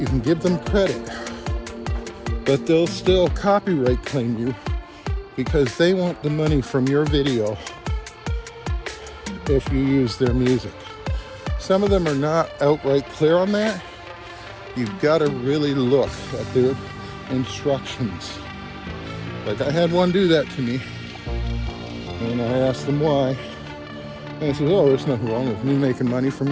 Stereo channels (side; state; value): both; identical; correlation 1.00